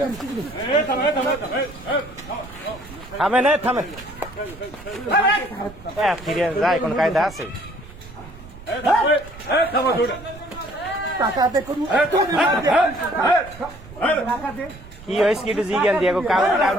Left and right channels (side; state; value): right; noise; rumble, 18 dB below the sound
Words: থামে না থামে ফিরে যায় কোন কায়দা আছে কি হয়েছে কি একটু জিজ্ঞান দিয়ে